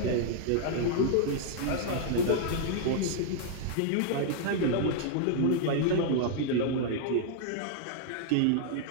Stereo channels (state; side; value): different; both; correlation -0.01